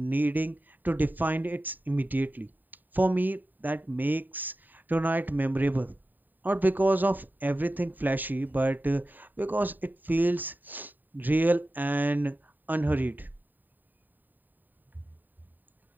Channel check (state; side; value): late; left; 0.089 ms